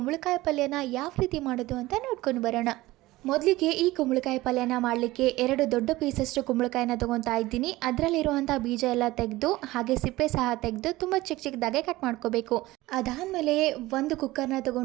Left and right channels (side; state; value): left; quieter; 18.5 dB